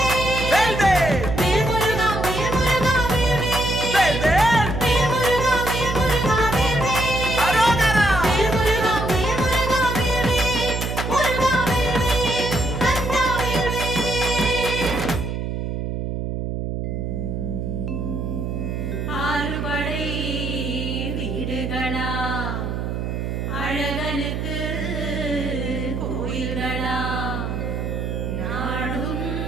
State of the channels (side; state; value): right; noise; hum, 3 dB below the sound